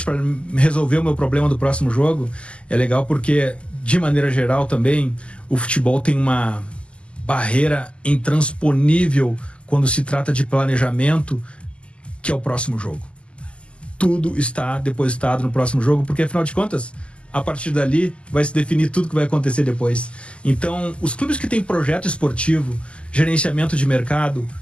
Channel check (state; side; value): late; right; 0.054 ms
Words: para resolver o meu problema do próximo jogo é legal, porque, de maneira geral também, o futebol tem uma barreira intransponível quando se trata de planejamento, que é o próximo jogo. Tudo está depositado no próximo jogo, porque afinal de contas, a partir dali vai se definir tudo que vai acontecer depois. Então, os clubes que têm projeto esportivo, gerenciamento de mercado,